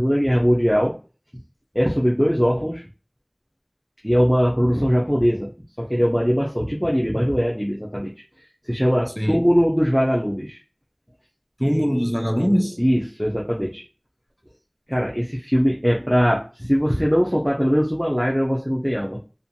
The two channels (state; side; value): identical; both; correlation 1.00